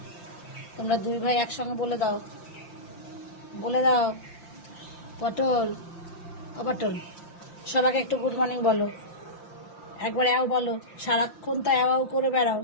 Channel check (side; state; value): right; late; 5.8 ms